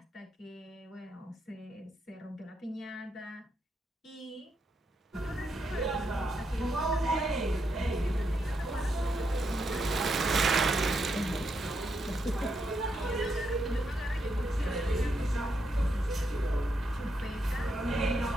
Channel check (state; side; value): normal; both; correlation 0.81